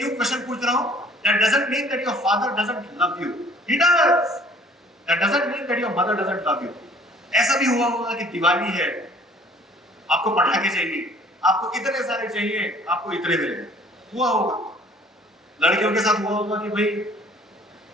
क्वेश्चन पूछ रहा हूं? That doesn't mean that your father doesn't love you. He does. That doesn't mean that your mother doesn't love you. ऐसा भी हुआ होगा कि दिवाली है, आपको पटाखे चाहिए, आपको इतने सारे चाहिए, आपको इतने मिलेंगे, हुआ होगा। लड़कियों के साथ हुआ होगा कि भाई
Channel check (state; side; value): normal; both; correlation 0.54